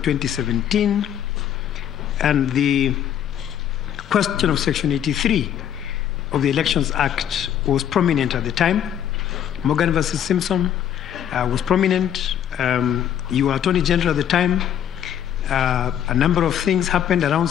and the question of Section 83 of the Elections Act was prominent at the time. Morgan versus Simpson was prominent. You were Attorney General at the time. A number of things happened around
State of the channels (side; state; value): right; quieter; 9.9 dB